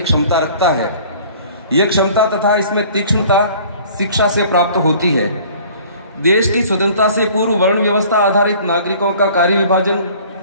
क्षमता रखता है। यह क्षमता तथा इसमें तीक्ष्णता शिक्षा से प्राप्त होती है। देश की स्वतंत्रता से पूर्व वर्ण व्यवस्था आधारित नागरिकों का कार्य विभाजन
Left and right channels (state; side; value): inverted; both; correlation -0.50